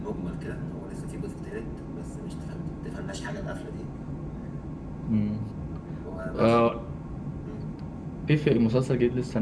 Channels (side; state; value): both; identical; correlation 1.00